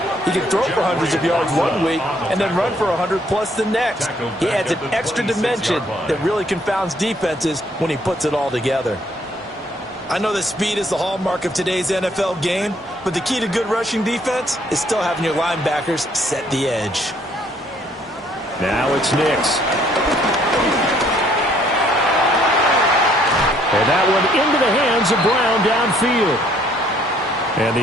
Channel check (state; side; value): normal; both; correlation 0.65